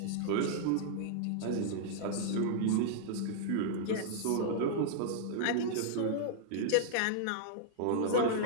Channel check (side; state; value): both; different; correlation -0.02